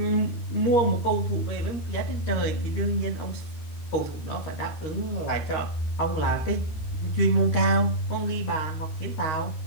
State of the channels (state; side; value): late; right; 13 ms